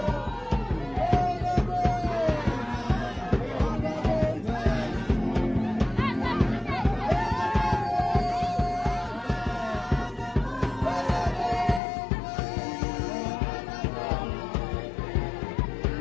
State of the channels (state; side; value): drops out; right; at 11.8 s